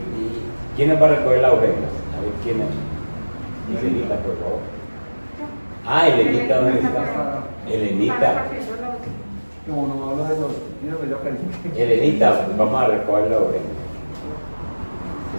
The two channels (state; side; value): inverted; both; correlation -1.00